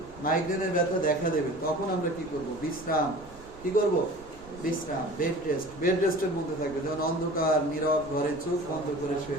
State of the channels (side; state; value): right; noise; rumble, 20 dB below the sound